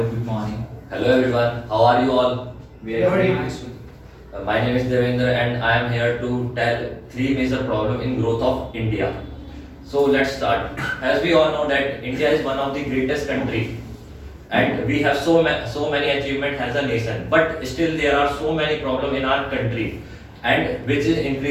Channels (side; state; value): both; identical; correlation 1.00